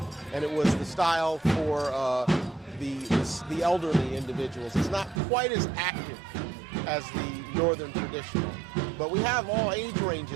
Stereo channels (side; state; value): left; drops out; at 5.2 s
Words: and it was the style for the elderly individuals. It's not quite as active as the northern traditional, but we have all age